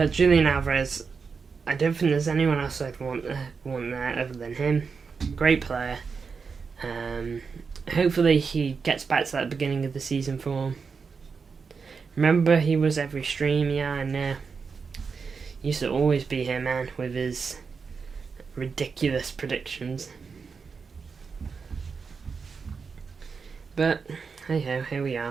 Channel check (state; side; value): quieter; left; 5.3 dB